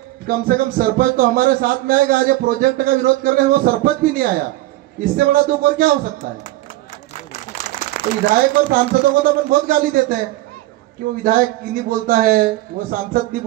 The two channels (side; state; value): left; quieter; 17.2 dB